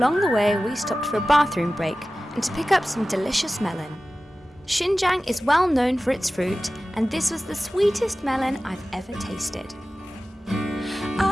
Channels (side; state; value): both; normal; correlation 0.96